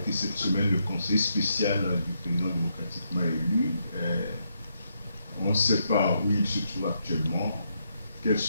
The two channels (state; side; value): inverted; both; correlation -0.79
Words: cette semaine le conseil spécial du président démocratiquement élu. On ne sait pas où il se trouve actuellement, quels